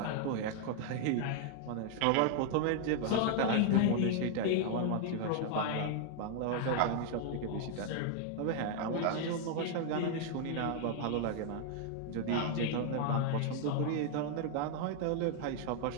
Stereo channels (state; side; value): different; both; correlation 0.00